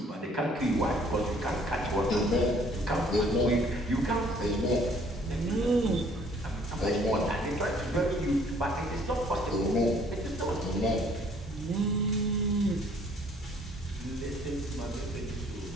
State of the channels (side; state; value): both; normal; correlation 0.60